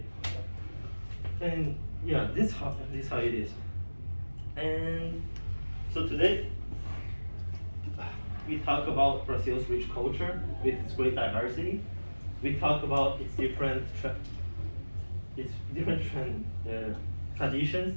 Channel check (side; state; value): both; inverted; correlation -1.00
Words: And yeah, this how it is. And so today we talk about Brazil's rich culture with its great diversity. We talk about its different traditions,